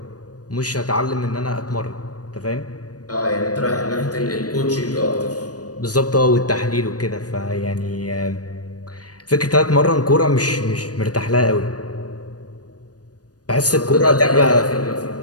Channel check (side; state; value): right; late; 0.68 ms